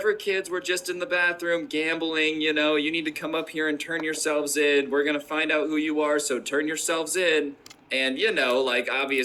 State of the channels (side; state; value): both; identical; correlation 1.00